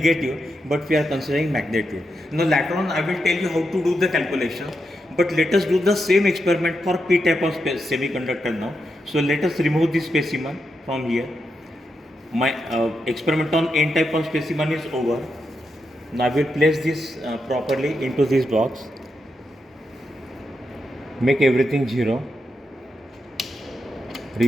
but we are considering magnitude. Now later on I will tell you how to do the calculation, but let us do the same experiment for P type of semiconductor now. So let us remove this specimen from here. My experiment on N type of specimen is over. Now I will place this properly into this box. Make everything 0.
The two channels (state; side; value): normal; both; correlation 0.85